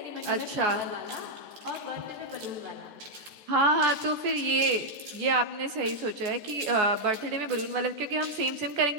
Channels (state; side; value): late; left; 14 ms